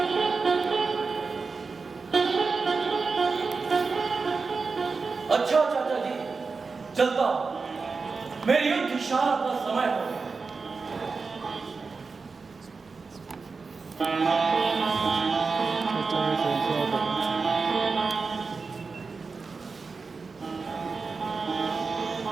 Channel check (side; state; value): left; quieter; 4.5 dB